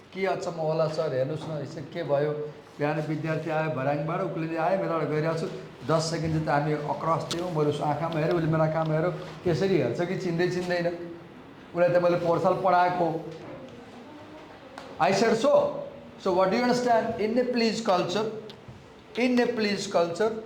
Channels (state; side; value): identical; both; correlation 1.00